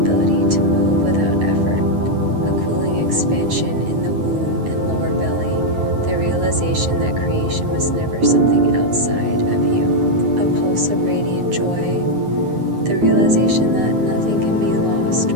to move without effort, a cooling expansion in the womb and lower belly, the realization that creation was never something outside of you, a pulse of radiant joy, the realization that nothing can be lost,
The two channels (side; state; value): left; late; 9.5 ms